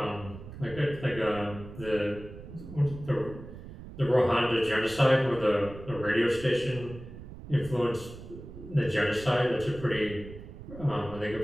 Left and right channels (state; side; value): noise; right; rumble, 14 dB below the sound